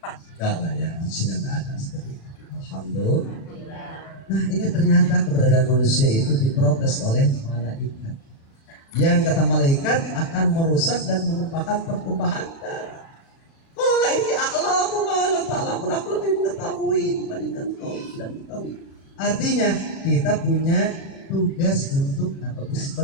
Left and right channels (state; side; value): late; right; 36 ms